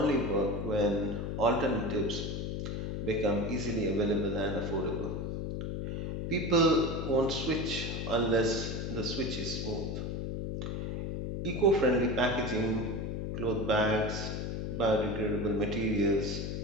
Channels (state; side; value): noise; left; hum, 3 dB below the sound